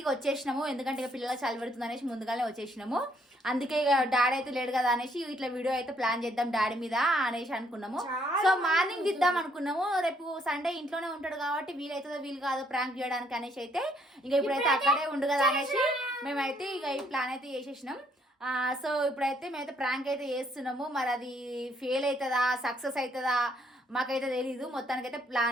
ఇక వచ్చేసినాము, ఎందుకంటే ఇక పిల్లలు చలి పెడుతుంది అనేసి ముందుగానే వచ్చేసినాము. అందుకే ఇక డాడీ అయితే లేడు కదా అనేసి ఇట్లా వీడియో అయితే ప్లాన్ చేద్దాం డాడీ మీద అనేసి అనుకున్నాము. సో మార్నింగ్ దిద్దాం అనుకున్నాము, రేపు సండే ఇంట్లోనే ఉంటాడు కాబట్టి వీలైతుందో వీలు కాదో ప్రాంక్ చేయడానికి అనేసి అయితే ఇక ఇప్పుడైతే అక్కడే ఉండు కదా అనేసి మేమైతే ఇక ఈ ప్లాన్ అయితే చేసేసినాం. సో ఇప్పుడైతే మేమైతే ప్రాంక్ అయితే చేస్తున్నాము. మరి అది ఫెయిల్ అవుతుందా సక్సెస్ అవుతుందా మాకైతే తెలీదు. మొత్తానికైతే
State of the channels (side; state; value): both; normal; correlation 0.69